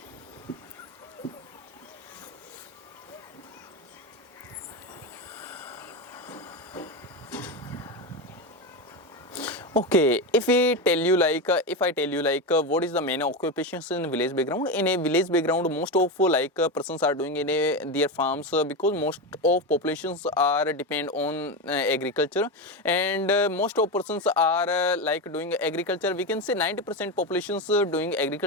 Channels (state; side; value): normal; both; correlation 0.16